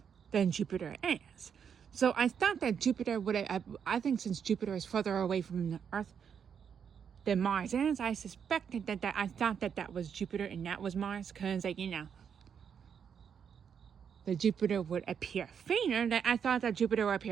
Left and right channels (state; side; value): quieter; left; 7.4 dB